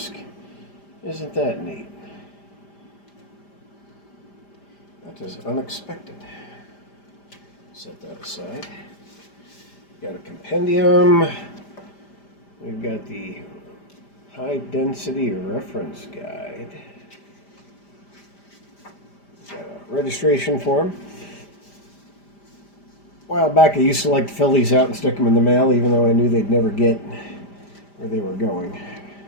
Isn't that neat? That is unexpected. Set that aside. Got a compendium. We've got the high density reference guide. Got a registration form. A while back I used to like to fill these out and stick them in the mail, even though I knew they'd never get where they were going.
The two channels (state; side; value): late; right; 5.0 ms